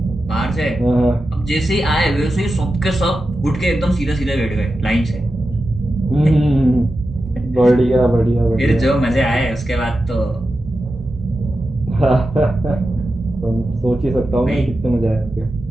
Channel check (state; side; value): normal; both; correlation 0.91